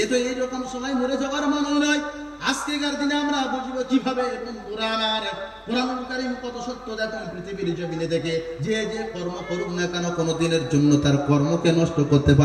এ তো এইরকম সময় মরে যাওয়ার মানুষ নয়। আজকেকার দিনে আমরা বুঝবো কিভাবে? বন্ধুরা আমার, কোরআনুল কারীম কত সত্য দেখুন পৃথিবীর জমিনে থেকে। যে যে কর্ম করুক না কেন, কোনো দিনের জন্য তার কর্মকে নষ্ট করতে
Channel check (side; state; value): both; identical; correlation 1.00